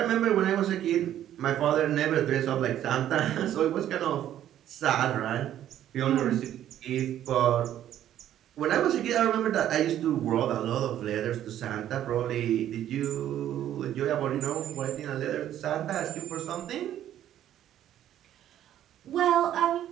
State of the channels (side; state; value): left; quieter; 11.5 dB